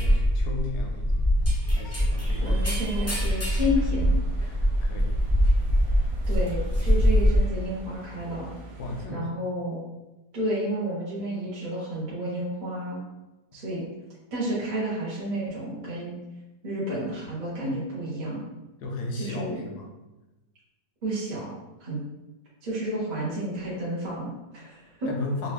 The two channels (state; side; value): normal; both; correlation 0.64